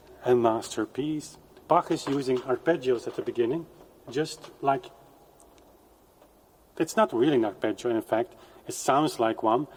a masterpiece. Bach is using arpeggios at the beginning, just like, it's not really an arpeggio, in fact, it sounds like one,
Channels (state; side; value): identical; both; correlation 1.00